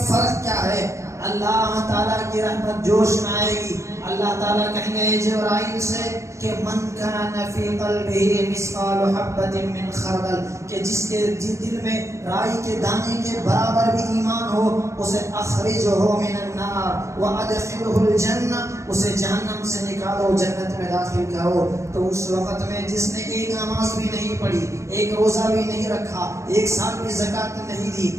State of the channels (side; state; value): left; late; 0.14 ms